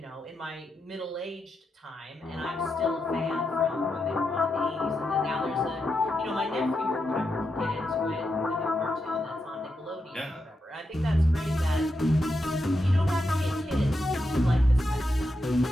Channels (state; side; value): normal; both; correlation 0.85